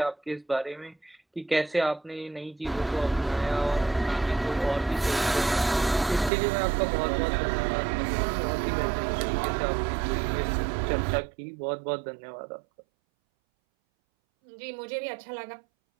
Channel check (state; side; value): drops out; left; at 6.3 s